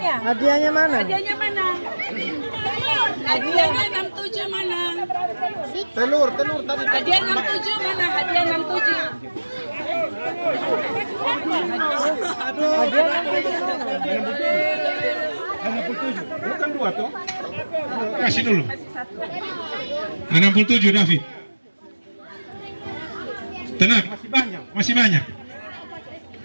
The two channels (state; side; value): inverted; both; correlation -1.00